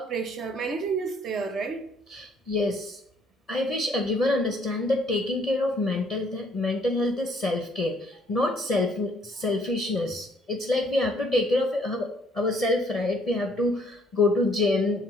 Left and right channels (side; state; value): both; normal; correlation 0.64